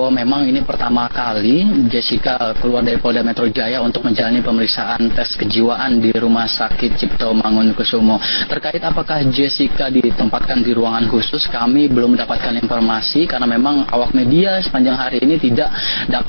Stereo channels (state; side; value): inverted; both; correlation -1.00